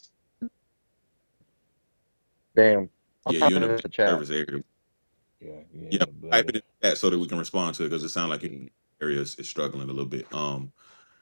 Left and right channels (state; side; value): inverted; both; correlation -1.00